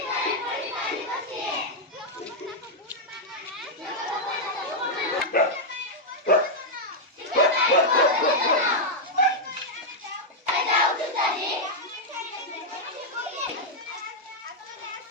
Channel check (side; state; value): both; normal; correlation -0.02